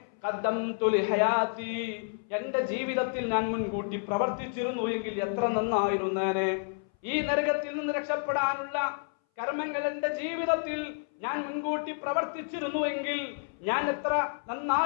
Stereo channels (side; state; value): right; silent; 58 dB below the other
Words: ഖദ്ദംതു ലിഹയാതി, എന്റെ ജീവിതത്തിൽ ഞാൻ മുൻകൂട്ടി പ്രവർത്തിച്ചിരുന്നു എങ്കിൽ എത്ര നന്നായിരുന്നേനെ. ഈ നരകത്തിൽ നിന്ന് രക്ഷപ്പെടാനുള്ള കർമ്മങ്ങൾ എന്റെ ജീവിതത്തിൽ ഞാൻ മുൻകൂട്ടി പ്രവർത്തിച്ചിരുന്നുവെങ്കിൽ ഞാൻ എത്ര